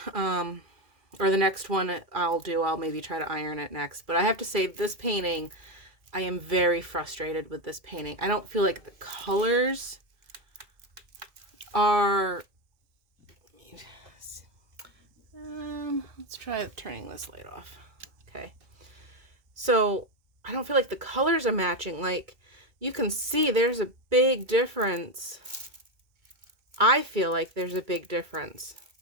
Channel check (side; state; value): left; late; 2.3 ms